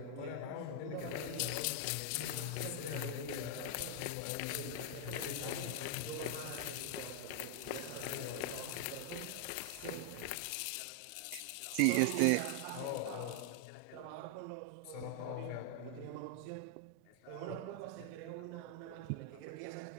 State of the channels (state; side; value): different; both; correlation 0.00